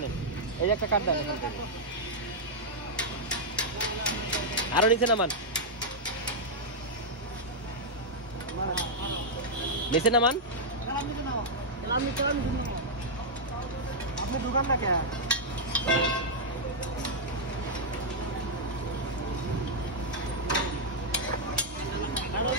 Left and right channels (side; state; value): both; normal; correlation -0.05